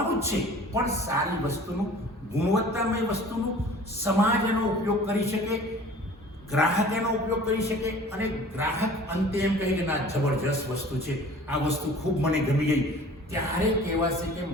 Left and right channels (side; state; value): both; normal; correlation 0.46